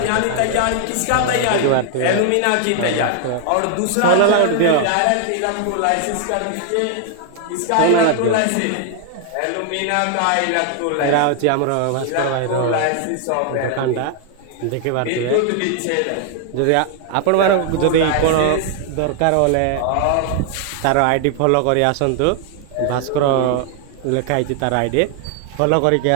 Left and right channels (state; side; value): different; both; correlation 0.00